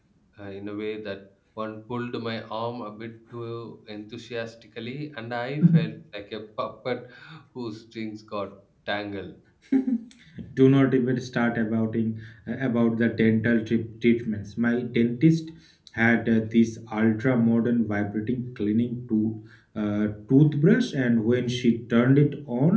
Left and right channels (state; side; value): identical; both; correlation 1.00